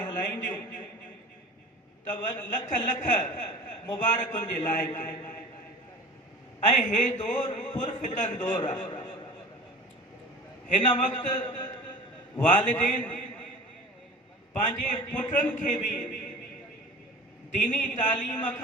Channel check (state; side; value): normal; both; correlation 0.39